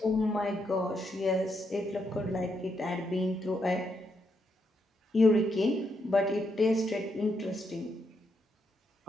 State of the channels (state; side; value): normal; both; correlation 0.79